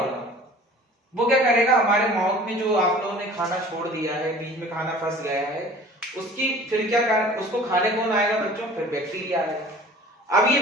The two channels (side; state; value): both; normal; correlation 0.46